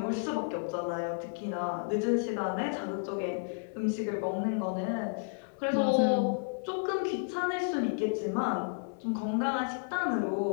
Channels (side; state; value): right; silent; digital silence